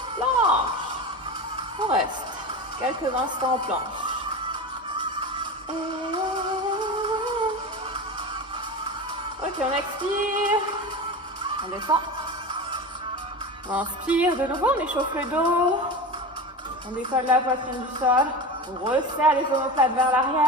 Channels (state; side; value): normal; both; correlation 0.27